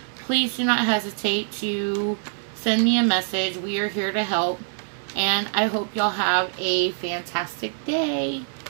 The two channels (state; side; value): silent; left; digital silence